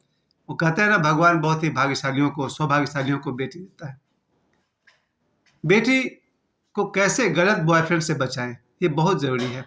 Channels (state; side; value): identical; both; correlation 1.00